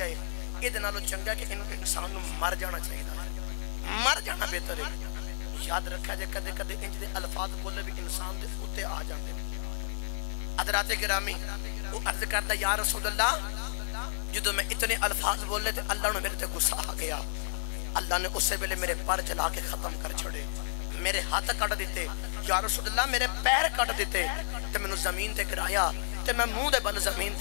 ہے یہ دنالو چنگا کہ انسان نو مر جانا چاہیے مر جانا بہتر ہے یاد رکھا جائے کدے کدے انج دے الفاظ بولے بھی انسان دے ہوتے آ جاندے حضرات گرامی وہ عرض کرتا یا رسول اللہ جدو میں اتنے الفاظ بولے تھے اللہ نے میرے تے غصہ آ گیا اللہ نے اسے ویلے میرے پر جلا کے ختم کر چھڑے میرے ہاتھ کٹ دیتے یا رسول اللہ میرے پیر کٹ دیتے تے میں نے زمین تے گرایا تے میں منہ دے بل زمین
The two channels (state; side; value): silent; right; digital silence